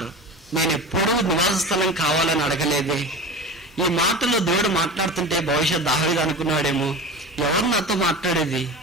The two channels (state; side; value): normal; both; correlation 0.31